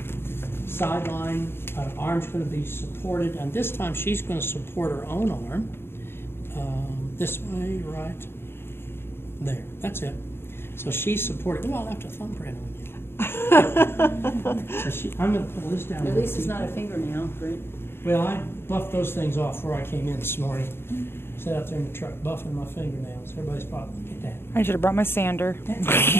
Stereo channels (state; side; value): late; right; 0.11 ms